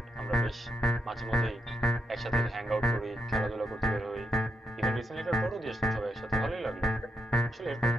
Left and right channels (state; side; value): normal; both; correlation 0.81